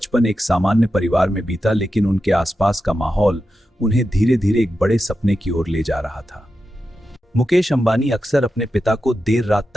एक सामान्य परिवार में बीता, लेकिन उनके आसपास का माहौल उन्हें धीरे धीरे एक बड़े सपने की ओर ले जा रहा था। मुकेश अंबानी अक्सर अपने पिता को देर रात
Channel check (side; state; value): both; normal; correlation 0.90